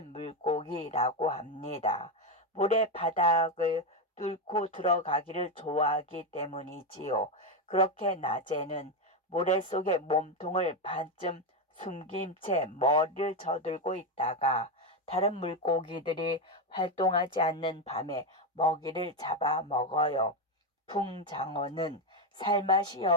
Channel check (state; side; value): normal; both; correlation 0.08